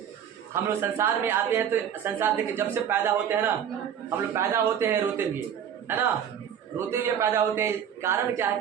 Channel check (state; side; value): quieter; left; 8.8 dB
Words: हम लोग संसार में आते हैं तो संसार देखिए, जब से पैदा होते हैं ना, हम लोग पैदा होते हैं रोते हुए, है ना, रोते हुए पैदा होते हैं। कारण क्या है